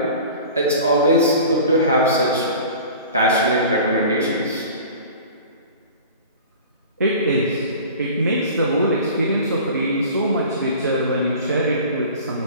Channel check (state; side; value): inverted; both; correlation -0.40